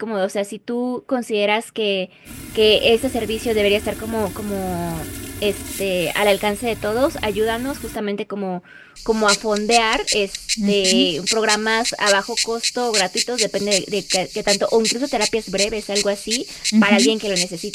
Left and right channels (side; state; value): both; identical; correlation 1.00